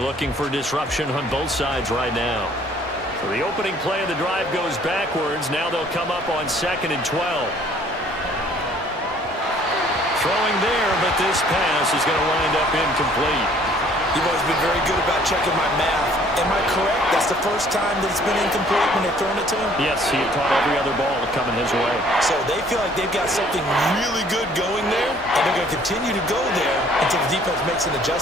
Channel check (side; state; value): both; normal; correlation 0.58